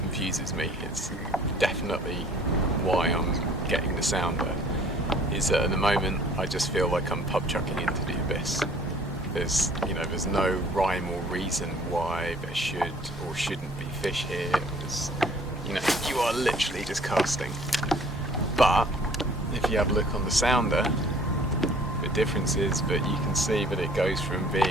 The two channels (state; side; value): normal; both; correlation 0.54